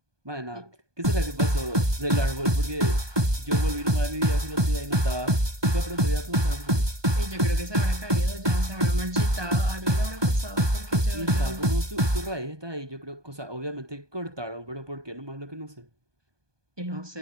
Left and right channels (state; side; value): late; left; 1.2 ms